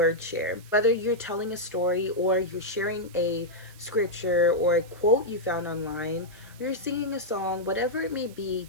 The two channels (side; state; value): right; noise; hiss, 23 dB below the sound